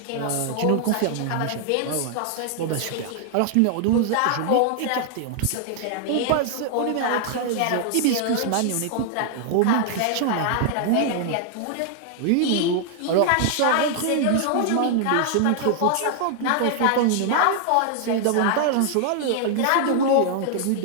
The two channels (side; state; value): both; different; correlation 0.00